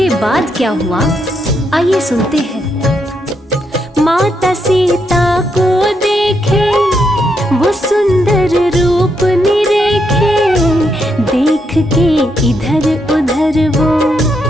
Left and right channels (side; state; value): both; normal; correlation 0.79